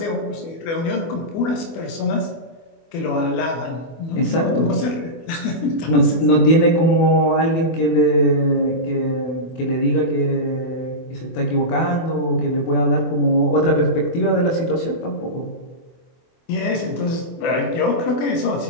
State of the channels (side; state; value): right; late; 24 ms